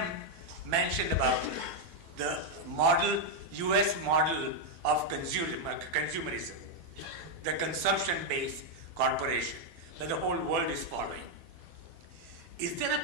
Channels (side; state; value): left; late; 12 ms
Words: mentioned about the model, US model of consumerism, the consumption-based corporation that the whole world is following. Is there a